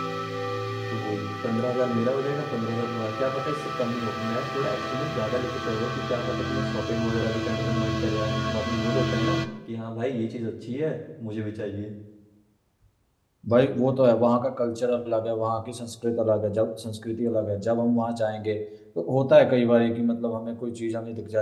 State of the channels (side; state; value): both; identical; correlation 1.00